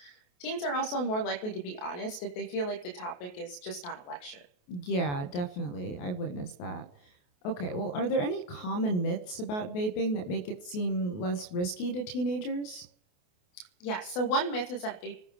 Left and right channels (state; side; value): late; right; 28 ms